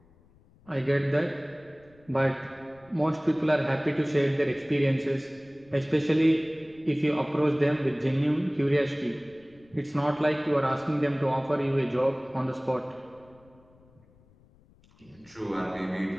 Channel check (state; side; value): noise; left; rumble, 29 dB below the sound